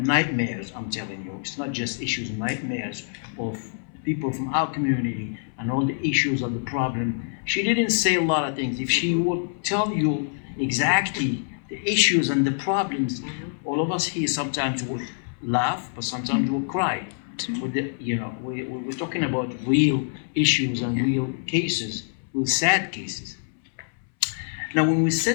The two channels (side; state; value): right; silent; 61 dB below the other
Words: I'm telling you. It's not just issues, nightmares of people from our community and all the issues of the problem. She didn't say a lot of things. If she would tell you exactly the issues and the problems, all of us here sometimes would laugh, but sometimes would cry. We're talking about real issues and real cases, real sad cases. Now, when we